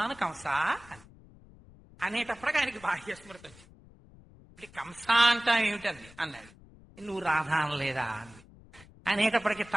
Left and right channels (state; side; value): noise; left; rumble, 23 dB below the sound